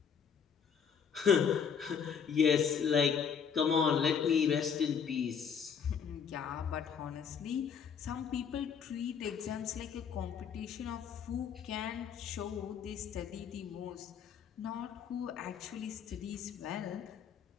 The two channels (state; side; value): quieter; right; 7.0 dB